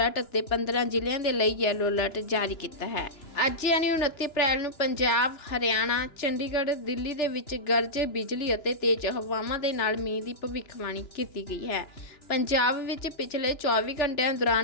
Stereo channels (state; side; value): late; right; 3.3 ms